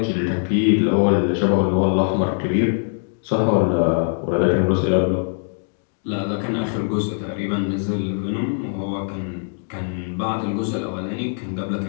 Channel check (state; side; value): silent; right; digital silence